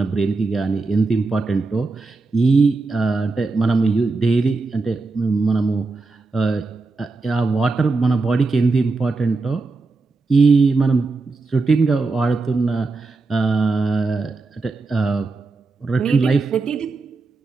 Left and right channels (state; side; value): quieter; left; 3.9 dB